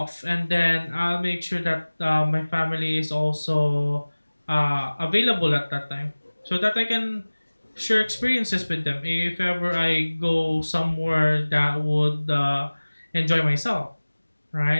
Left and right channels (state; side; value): inverted; both; correlation -1.00